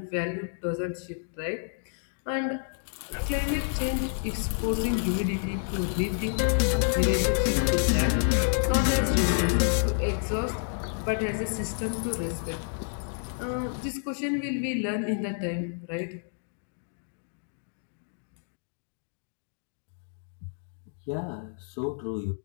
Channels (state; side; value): silent; right; digital silence